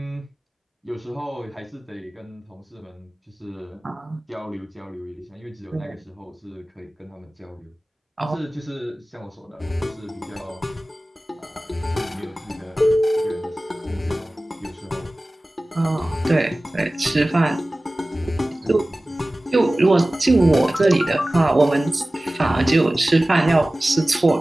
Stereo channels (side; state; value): both; normal; correlation 0.97